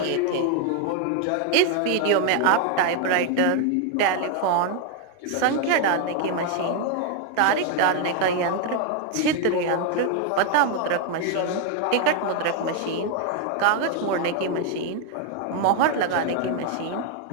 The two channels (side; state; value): both; different; correlation 0.01